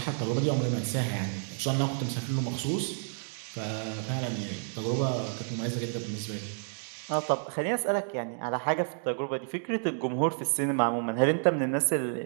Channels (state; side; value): silent; left; digital silence